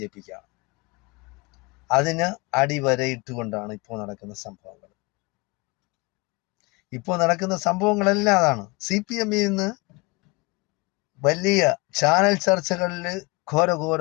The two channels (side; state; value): right; quieter; 26.5 dB